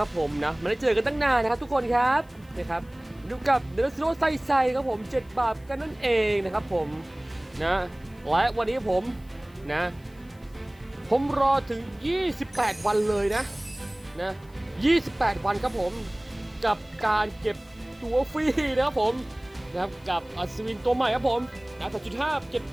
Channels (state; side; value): noise; left; hiss, 30 dB below the sound